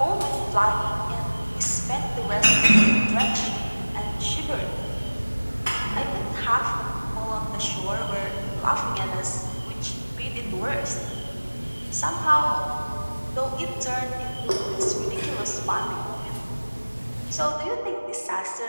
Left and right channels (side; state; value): both; inverted; correlation -1.00